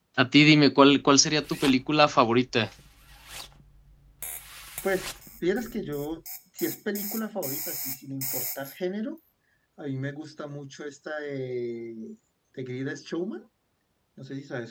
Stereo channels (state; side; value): identical; both; correlation 1.00